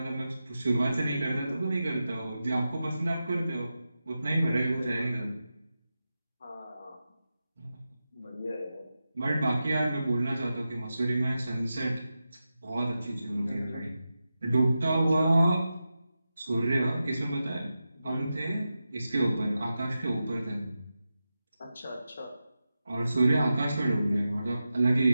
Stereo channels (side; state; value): both; inverted; correlation -0.92